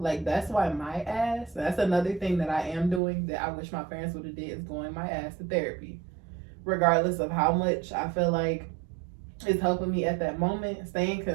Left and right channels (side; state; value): left; drops out; at 3.0 s